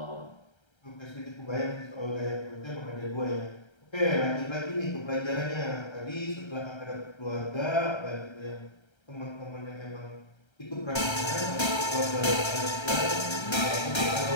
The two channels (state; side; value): late; right; 1.3 ms